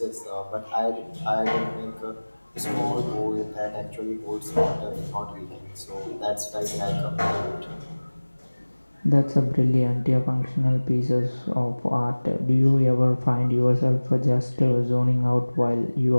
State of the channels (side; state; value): both; inverted; correlation -1.00